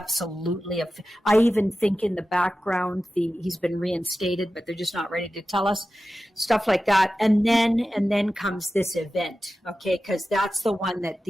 I even think in the background he's been reinstated, but they're just not ready to tell us stuff like that. And then comes this event, okay? Because that's the one that the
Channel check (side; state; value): both; normal; correlation 0.94